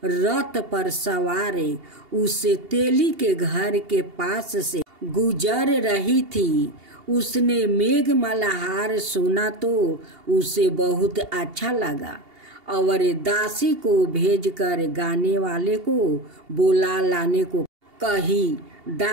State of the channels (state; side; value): late; left; 2.8 ms